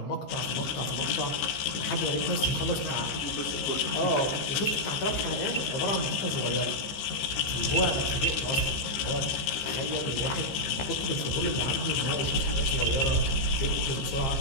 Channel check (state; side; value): late; right; 15 ms